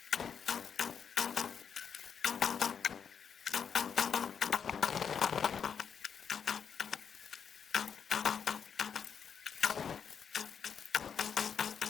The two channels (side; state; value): right; quieter; 7.1 dB